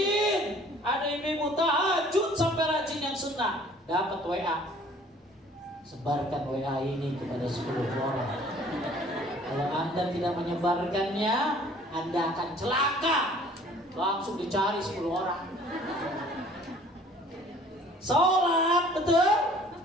Ada ibu tahajud sampai rajin yang sunnah. Dapat WA. Sebarkan WA ini kepada 10 orang. Kalau Anda tidak menyebarkannya, Anda akan celaka. Langsung dicari 10 orang. Sholat, betul?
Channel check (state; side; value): normal; both; correlation 0.53